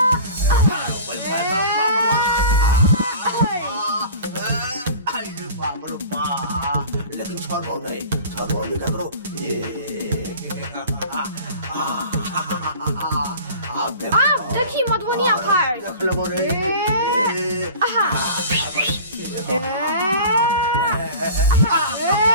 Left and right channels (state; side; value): inverted; both; correlation -0.40